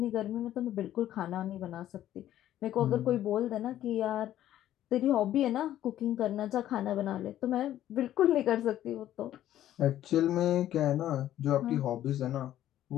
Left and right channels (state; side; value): quieter; right; 12.5 dB